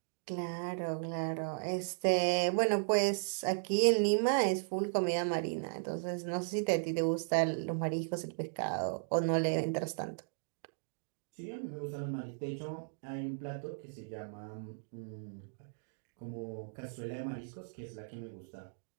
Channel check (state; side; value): silent; left; digital silence